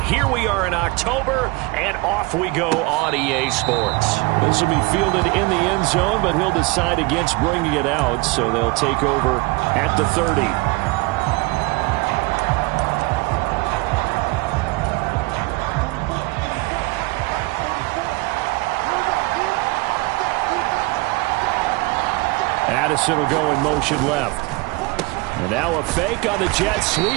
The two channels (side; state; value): left; quieter; 24.2 dB